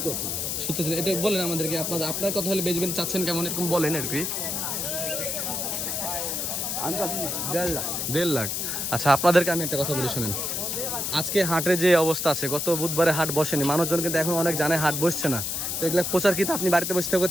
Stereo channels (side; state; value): left; noise; hiss, 2 dB below the sound